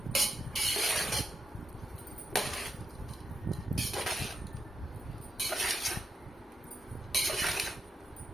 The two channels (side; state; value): both; normal; correlation 0.84